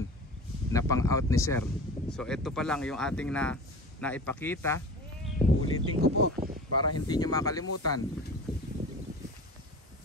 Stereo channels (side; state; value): both; normal; correlation 0.36